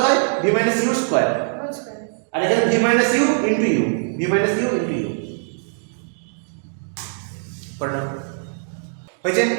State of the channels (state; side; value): silent; left; digital silence